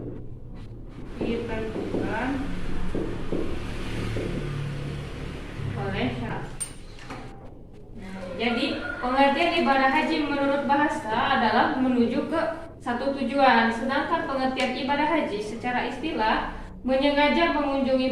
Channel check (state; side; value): identical; both; correlation 1.00